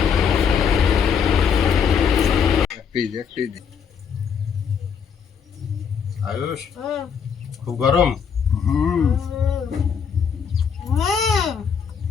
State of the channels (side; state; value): right; quieter; 7.0 dB